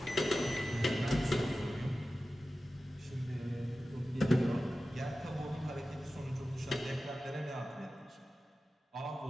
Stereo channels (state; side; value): normal; both; correlation 0.95